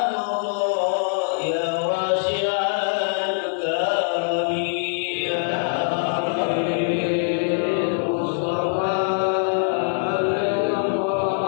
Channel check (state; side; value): silent; right; digital silence